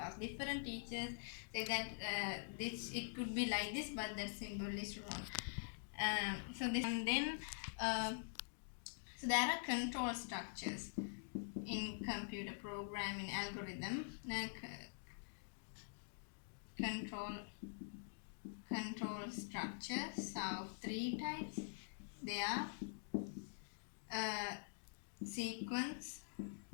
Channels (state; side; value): silent; right; digital silence